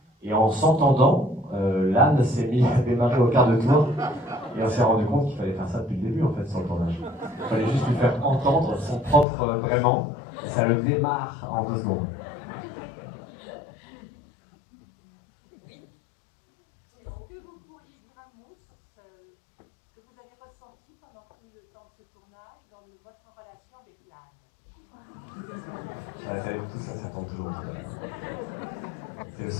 et en s'entendant, l'âne s'est mis à démarrer au quart de tour, et on s'est rendu compte qu'il fallait faire ça depuis le début, en fait, sur le tournage. Il fallait juste lui faire entendre son propre braiement, et ça le démarre en 2 secondes. Tout ça, ça tombe toujours. C'est le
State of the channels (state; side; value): drops out; right; at 9.2 s